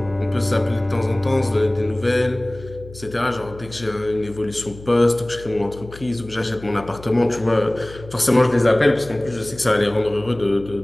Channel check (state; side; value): noise; left; hum, 17 dB below the sound